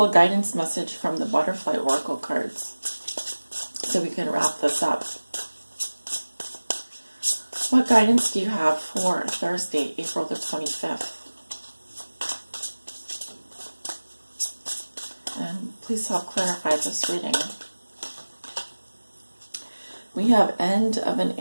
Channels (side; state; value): both; inverted; correlation -1.00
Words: a guidance message from the Butterfly Oracle cards so we can wrap this up. What guidance do you have for Thursday, April the 25th? And please help clarify this reading. We have End of an